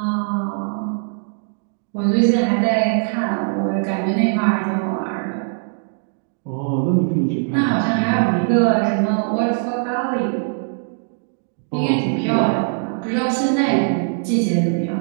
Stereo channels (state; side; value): silent; left; 64 dB below the other